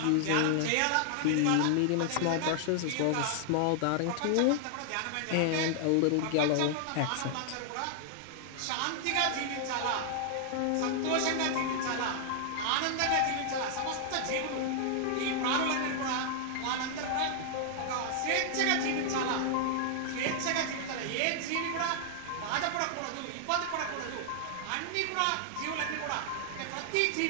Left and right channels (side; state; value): both; different; correlation -0.01